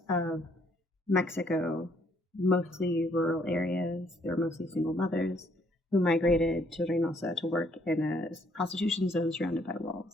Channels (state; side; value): normal; both; correlation 0.67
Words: of Mexico, mostly rural areas. They were mostly single mothers who migrated to Reynosa to work in a prostitution zone surrounded by